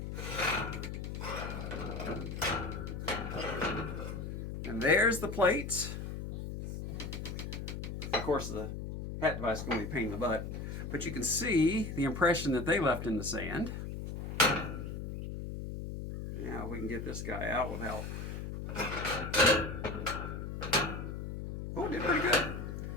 And there's the plates. Of course, the hat device is going to be a pain in the butt, but you can see the impression that they left in the sand. Now we can get this guy out without... Oh, did pretty good.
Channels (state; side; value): noise; left; hum, 6 dB below the sound